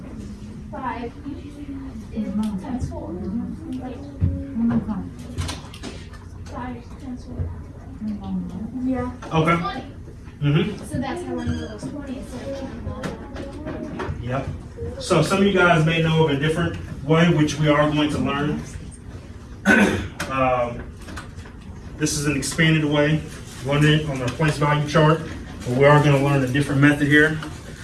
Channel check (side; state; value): both; identical; correlation 1.00